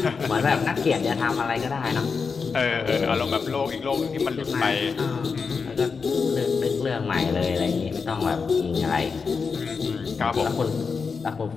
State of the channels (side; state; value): right; quieter; 5.2 dB